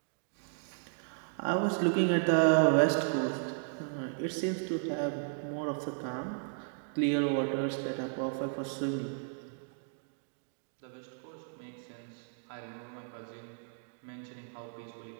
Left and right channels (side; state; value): left; silent; digital silence